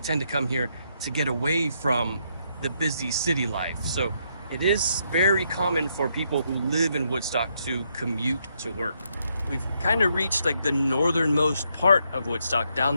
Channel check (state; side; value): inverted; both; correlation -0.76